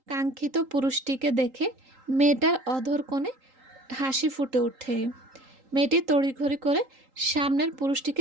কাঙ্ক্ষিত পুরুষটিকে দেখে মেয়েটার অধর কোণে হাসি ফুটে ওঠে। মেয়েটি তড়িঘড়ি করে সামনের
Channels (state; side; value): late; left; 3.8 ms